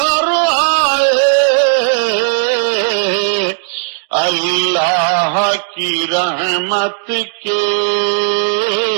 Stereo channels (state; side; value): silent; left; digital silence